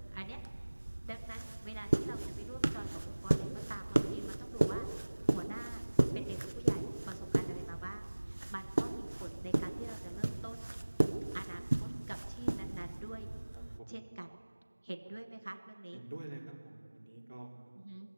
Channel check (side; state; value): both; inverted; correlation -1.00